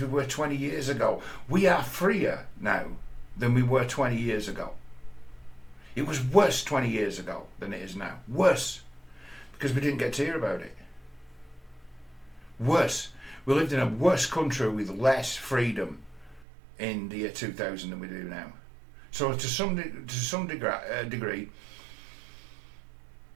we were 20 years ago. We are freer now than we were 20 years ago. It was worse 20 years ago than it is now. Worse. Because we didn't get to hear about it. Worse. We lived in a worse country with less freedom in the year 2000 than we do now. So to some degree,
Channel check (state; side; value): drops out; left; at 16.4 s